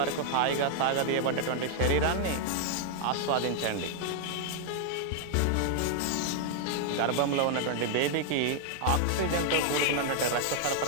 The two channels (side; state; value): both; different; correlation 0.00